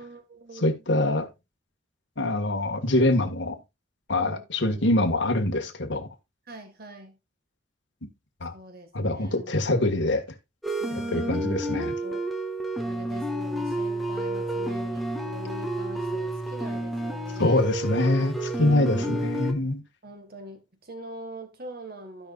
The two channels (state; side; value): normal; both; correlation 0.43